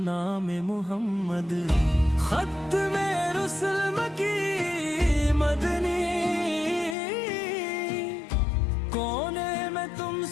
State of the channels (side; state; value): right; drops out; at 7.0 s